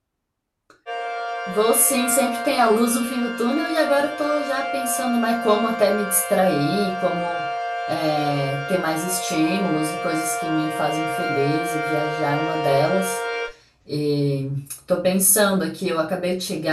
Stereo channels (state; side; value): identical; both; correlation 1.00